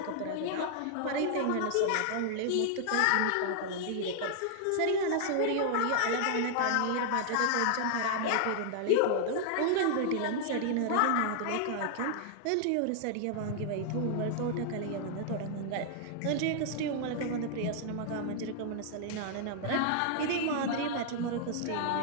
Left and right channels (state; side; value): different; both; correlation -0.01